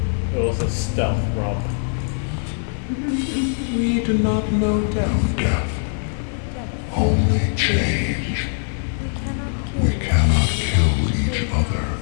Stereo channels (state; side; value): silent; right; digital silence